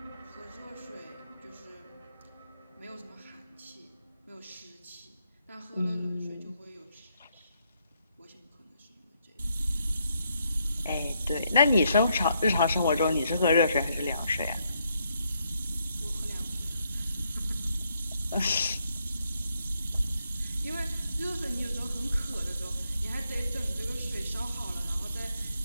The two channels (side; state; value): both; inverted; correlation -0.76